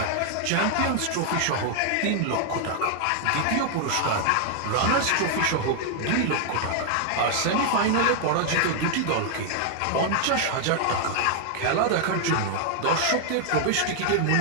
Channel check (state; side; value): different; both; correlation 0.00